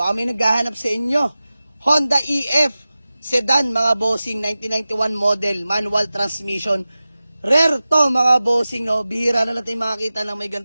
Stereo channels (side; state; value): both; inverted; correlation -0.96